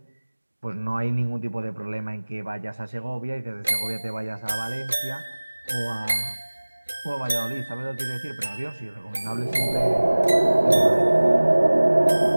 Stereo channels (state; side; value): inverted; both; correlation -1.00